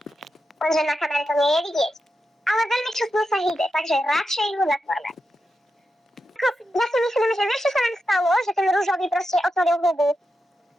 Lenže na kamere to nie je vidieť. Ale veľmi čustne sa hýbe, takže radšej ho zatvorme. Ja si myslím, že vieš, čo sa nám stalo? Že ten rúžový proste otvoril hubu.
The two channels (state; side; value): normal; both; correlation 0.88